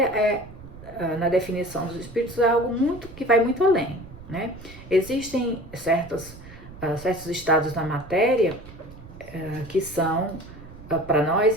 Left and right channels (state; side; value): noise; right; rumble, 17 dB below the sound